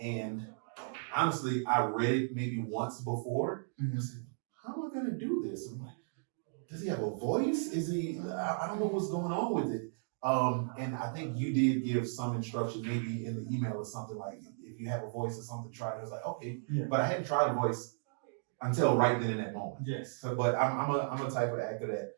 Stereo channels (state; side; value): silent; left; digital silence